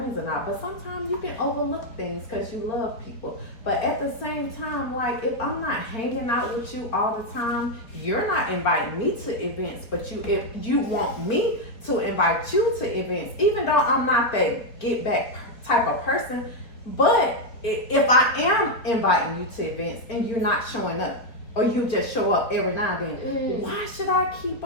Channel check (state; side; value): late; right; 4.2 ms